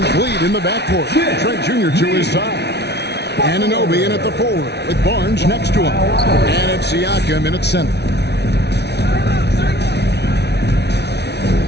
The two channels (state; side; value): late; right; 0.49 ms